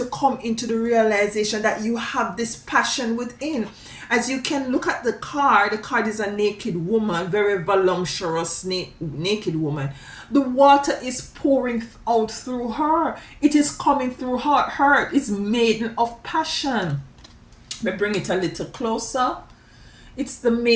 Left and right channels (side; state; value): both; identical; correlation 1.00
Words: come into the realization that you have this passion within. As you can look at the card is a naked woman, very voluptuous naked woman. The water is pouring out through her. It is coming through her. It's Maiden of Passion. Let me bring it a little closer. It's the